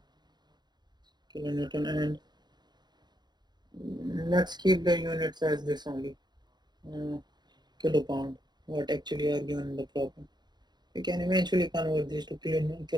kilonewton, and let's keep the units as this only, uh, kilopound, what actually are given in the problem. We can eventually convert these to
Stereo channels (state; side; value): late; left; 0.21 ms